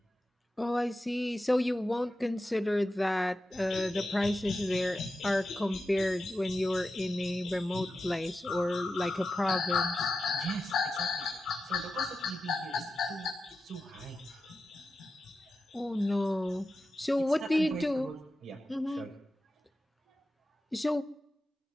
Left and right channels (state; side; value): normal; both; correlation 0.92